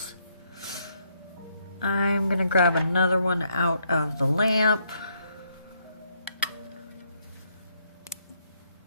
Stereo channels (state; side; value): inverted; both; correlation -0.73